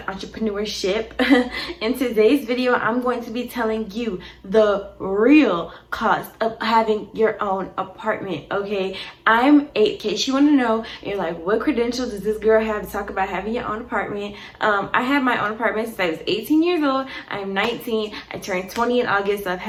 entrepreneurship. In today's video, I'm going to be telling you the real cost of having your own apartment, okay? I'm 8, in case you want to know, you're like, what credentials does this girl have to talk about having your own apartment? I have my own apartment since I was 18 years old. I'm 19. I turned 20 in August, so I've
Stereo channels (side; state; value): both; identical; correlation 1.00